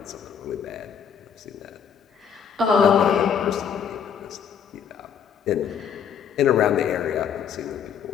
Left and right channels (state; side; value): quieter; right; 7.6 dB